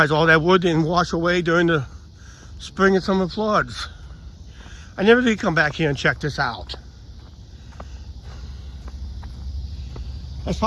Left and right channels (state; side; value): identical; both; correlation 1.00